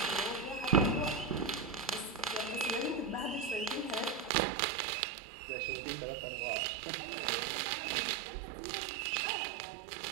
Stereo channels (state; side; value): drops out; left; at 4.3 s